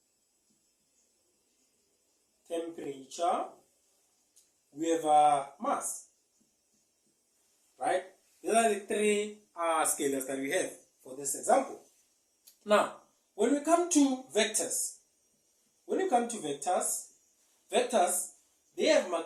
we have mass, right? These are the three scalars that we have for this example. Now, when we come to vectors, vectors, they have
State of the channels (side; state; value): both; identical; correlation 1.00